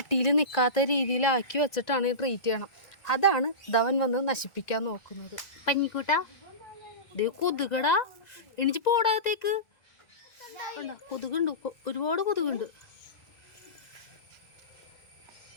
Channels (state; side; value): late; right; 1.9 ms